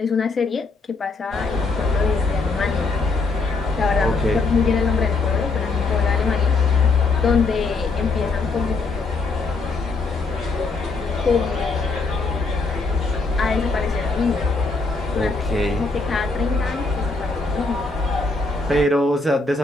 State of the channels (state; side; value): quieter; right; 3.8 dB